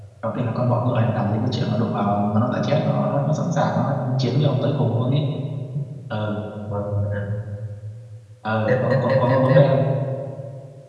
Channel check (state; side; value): identical; both; correlation 1.00